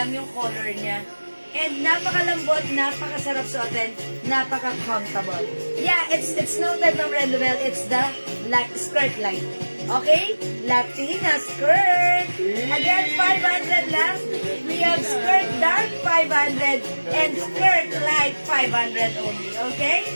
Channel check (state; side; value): inverted; both; correlation -1.00